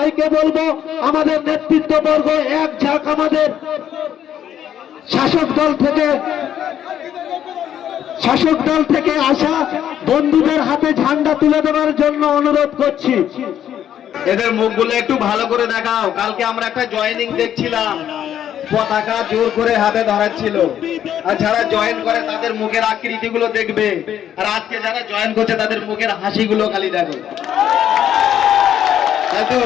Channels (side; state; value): right; quieter; 10.2 dB